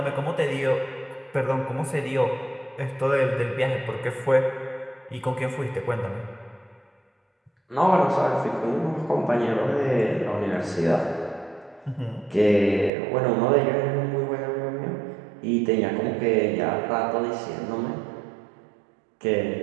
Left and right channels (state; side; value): drops out; left; at 12.9 s